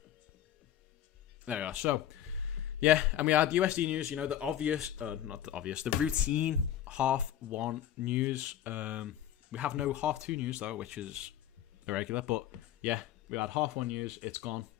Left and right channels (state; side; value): quieter; right; 11.1 dB